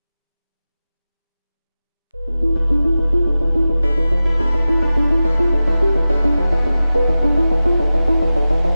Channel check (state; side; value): inverted; both; correlation -0.95